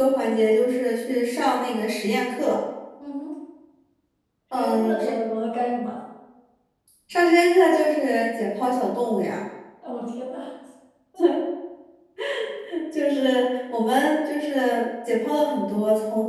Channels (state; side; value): identical; both; correlation 1.00